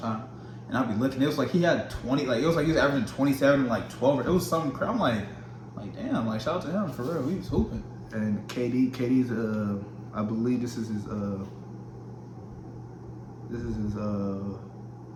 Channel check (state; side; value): identical; both; correlation 1.00